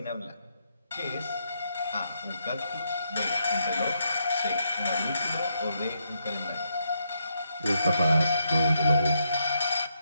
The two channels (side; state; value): both; inverted; correlation -0.79